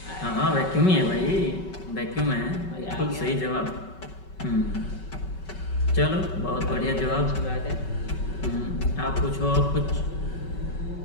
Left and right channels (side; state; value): right; late; 5.3 ms